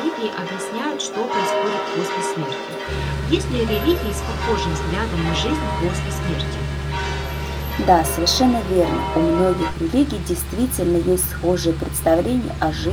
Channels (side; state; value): both; identical; correlation 1.00